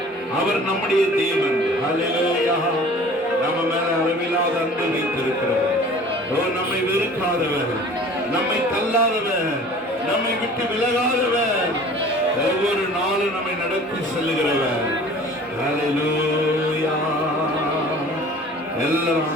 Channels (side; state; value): both; normal; correlation 0.46